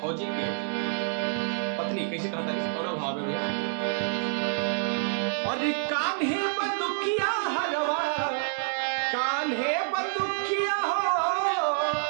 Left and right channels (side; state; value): left; silent; 59 dB below the other